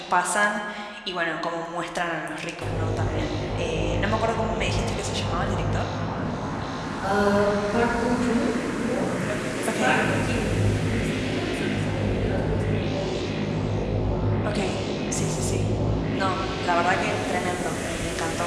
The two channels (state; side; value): identical; both; correlation 1.00